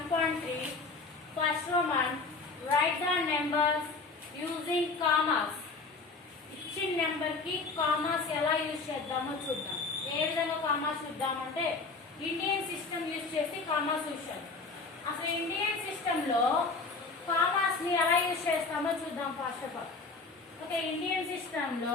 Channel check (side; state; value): right; quieter; 4.0 dB